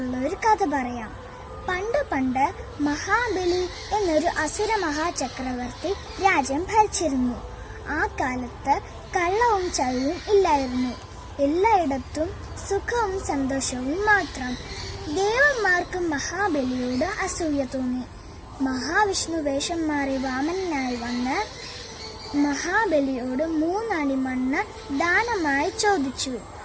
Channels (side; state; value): both; identical; correlation 1.00